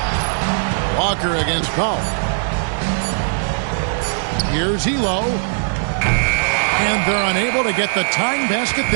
Walker against Powell. Here's Elo. And they're unable to get the tying basket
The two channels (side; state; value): left; silent; digital silence